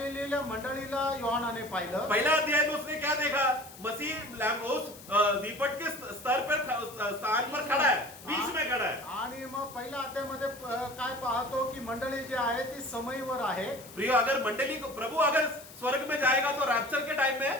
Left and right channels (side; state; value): left; noise; hiss, 18 dB below the sound